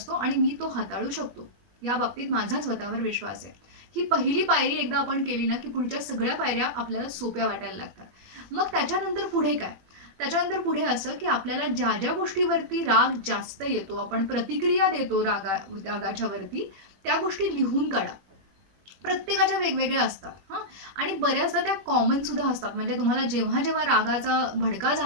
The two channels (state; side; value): late; left; 21 ms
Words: आणि मी तो हाताळू शकतो. या बाबतीत माझा स्वतःवर विश्वास आहे. ही पहिली पायरी एकदा आपण केली ना, की पुढच्या सगळ्या पायऱ्या आपल्याला सोप्या वाटायला लागतात. मग त्याच्यानंतर पुढे काय? त्याच्यानंतर पुढे असं, की आपल्याला ज्या गोष्टीवरती राग जास्त येतो, आपण प्रतिक्रिया देतो रागाच्या वरती, त्या गोष्टी लिहून काढा. प्रत्येकाच्या वेगवेगळ्या असतात हां. आणि बऱ्याचदा त्या कॉमन सुद्धा असतात. म्हणजे तुम्हाला जेव्हा रागाचा भडका